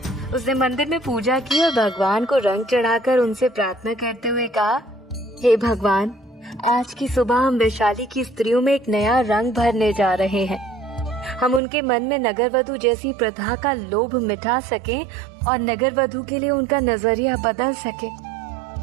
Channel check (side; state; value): left; drops out; at 11.6 s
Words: उसने मंदिर में पूजा की और भगवान को रंग चढ़ाकर उनसे प्रार्थना करते हुए कहा, हे भगवान, आज की सुबह हम वैशाली की स्त्रियों में एक नया रंग भरने जा रहे हैं। हम उनके मन में नगरवधु जैसी प्रथा का लोभ मिटा सकें और नगरवधु के लिए उनका नजरिया बदल